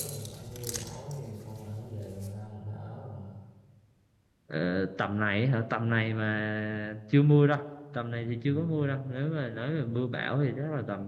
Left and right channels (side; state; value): both; identical; correlation 1.00